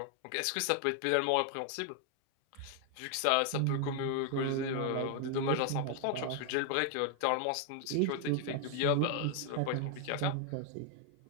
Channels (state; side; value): different; both; correlation 0.00